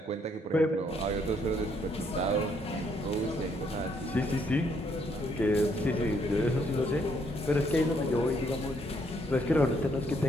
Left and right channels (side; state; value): both; normal; correlation 0.70